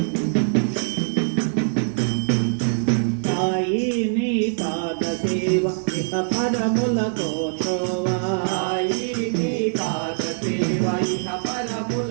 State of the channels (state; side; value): silent; left; digital silence